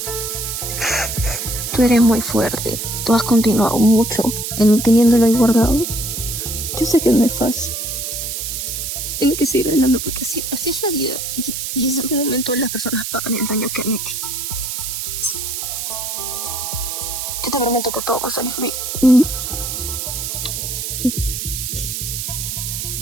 Tú eres muy fuerte. Tú has continuado mucho en teniéndolo ahí guardado. Yo sé que no es fácil. Tengo que seguir hablando porque así es la vida. Y en ese momento las personas pagan el daño que han hecho. Yo te prometo que todo va a salir bien.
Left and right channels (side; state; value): right; noise; hiss, 4 dB below the sound